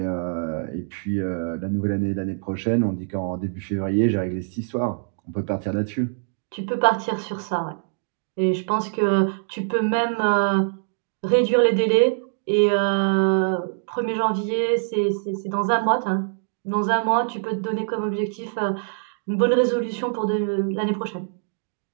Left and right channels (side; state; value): left; silent; digital silence